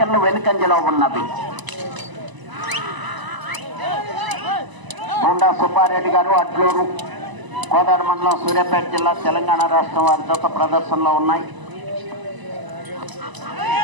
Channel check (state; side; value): late; left; 1.0 ms